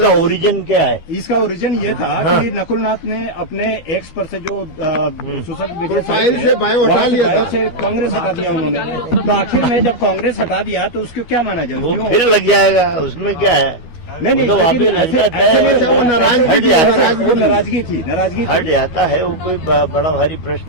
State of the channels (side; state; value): right; late; 12 ms